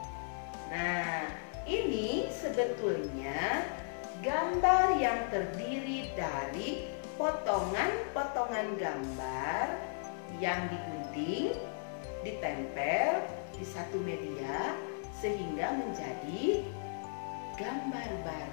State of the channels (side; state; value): right; silent; 54 dB below the other